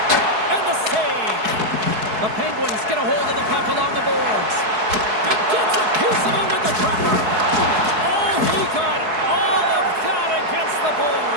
And the save. The Penguins get a hold of the puck along the boards. And gets a piece of it with the trapper. Oh, he got all of that against the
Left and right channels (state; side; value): late; left; 4.7 ms